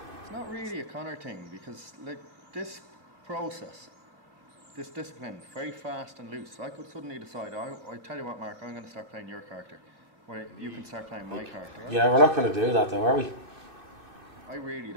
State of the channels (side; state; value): left; late; 2.5 ms